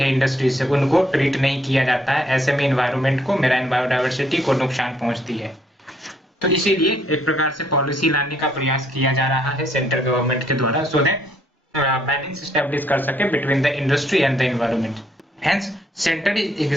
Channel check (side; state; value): both; normal; correlation 0.69